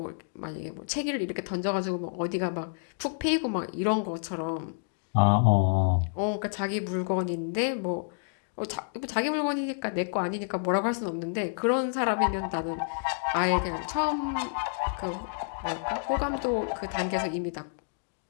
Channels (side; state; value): right; silent; digital silence